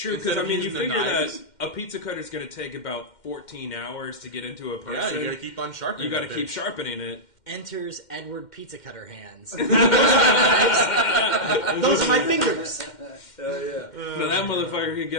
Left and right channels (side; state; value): right; late; 2.1 ms